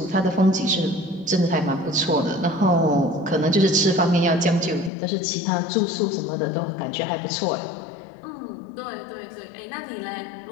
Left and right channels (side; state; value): right; drops out; at 4.9 s